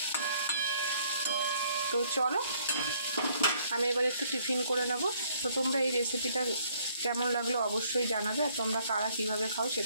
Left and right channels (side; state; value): both; inverted; correlation -0.64